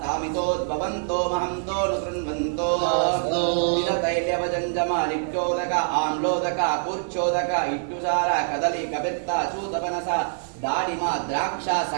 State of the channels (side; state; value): left; silent; 62 dB below the other